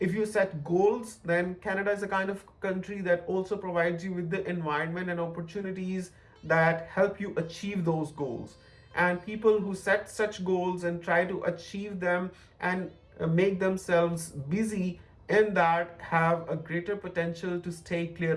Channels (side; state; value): both; identical; correlation 1.00